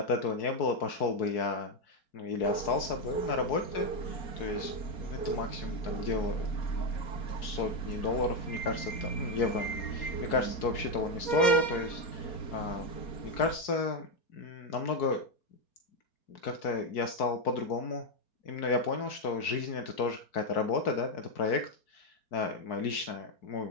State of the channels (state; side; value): late; right; 4.6 ms